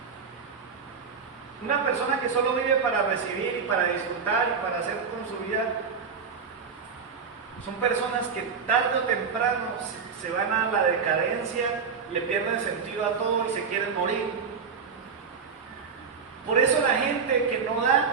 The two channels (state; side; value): quieter; left; 6.0 dB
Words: Una persona que solo vive para recibir y para disfrutar y para hacer con su vida, son personas que tarde o temprano se van a la decadencia, le pierden sentido a todo y se quieren morir. Por eso la gente que no